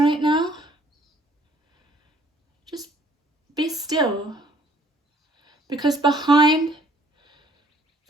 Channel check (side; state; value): both; normal; correlation 0.60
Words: now, just be still. Because behind